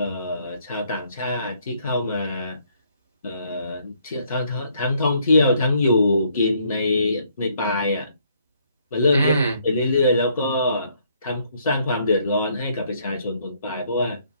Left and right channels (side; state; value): both; inverted; correlation -0.68